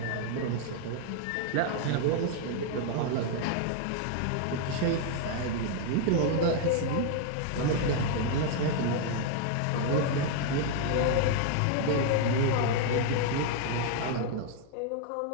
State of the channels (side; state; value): both; different; correlation 0.00